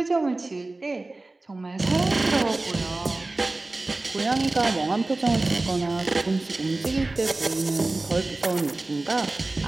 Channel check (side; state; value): left; quieter; 3.1 dB